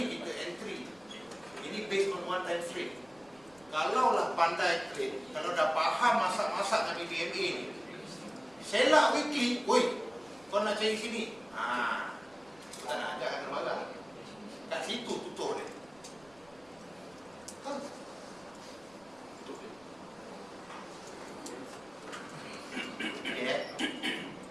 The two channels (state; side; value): noise; right; rumble, 28 dB below the sound